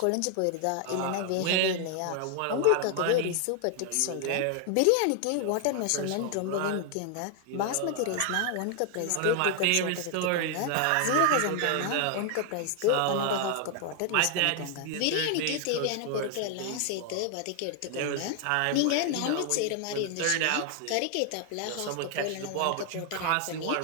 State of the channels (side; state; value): both; different; correlation 0.00